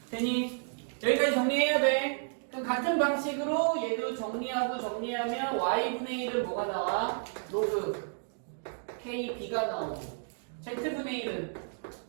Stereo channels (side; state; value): left; silent; digital silence